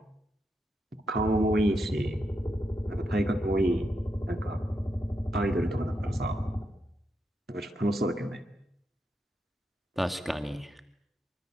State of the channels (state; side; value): normal; both; correlation 0.84